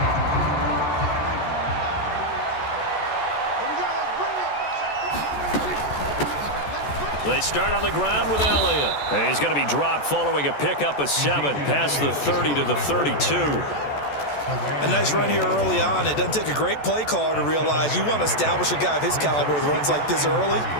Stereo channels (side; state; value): right; late; 14 ms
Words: They start on the ground with Elliott. And he's going to be dropped following a pickup of 7 past the 30 to the 32. A nice run here early on. It doesn't take a great play caller to realize you want to establish a guy of his caliber with runs like this early